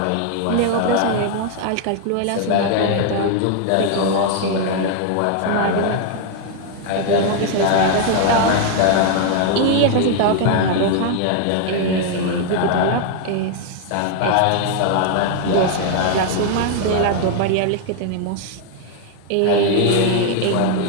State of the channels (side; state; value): both; different; correlation 0.00